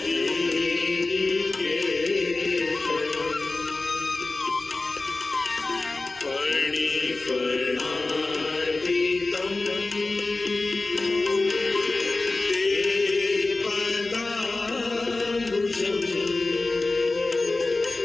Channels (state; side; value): quieter; right; 3.3 dB